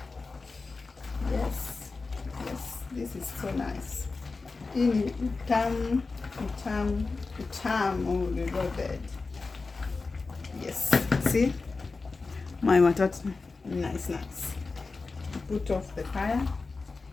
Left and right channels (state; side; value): quieter; right; 4.0 dB